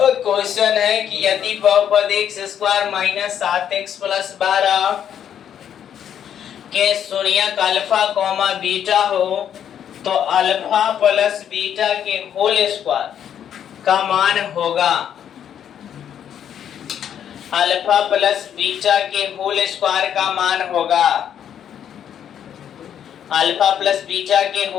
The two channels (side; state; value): right; quieter; 9.3 dB